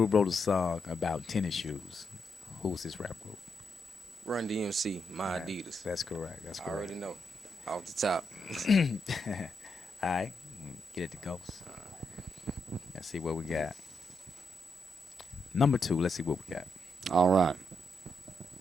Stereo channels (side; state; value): both; normal; correlation 0.82